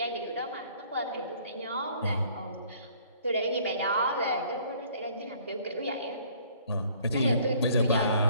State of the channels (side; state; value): both; inverted; correlation -0.58